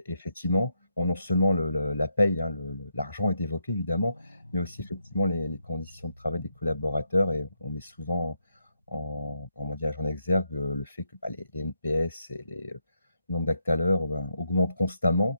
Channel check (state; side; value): inverted; both; correlation -0.80